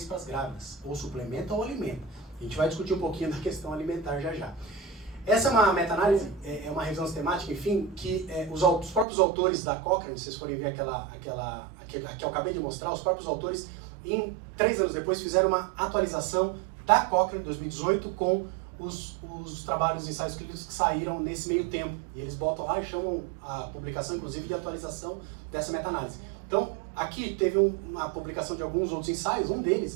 para as grávidas, ou suplementa ou alimenta. A gente vai discutir um pouquinho da questão alimentar já já. Essa é uma meta-análise, é uma revisão sistemática, enfim, que os próprios autores da Cochrane, se vocês forem ver aquela que eu acabei de mostrar, os próprios autores, 3 anos depois, fizeram uma atualização da Cochrane, 2018, com os trabalhos, os ensaios clínicos que saíram nesse meio tempo. E eles botam lá e chamam a publicação, inclusive, de atualização dessa meta-análise. Então, aqui teve uma publicação de alguns outros ensaios, um deles,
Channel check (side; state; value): left; drops out; at 9.1 s